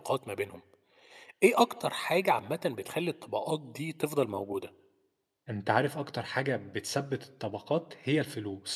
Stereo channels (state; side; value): identical; both; correlation 1.00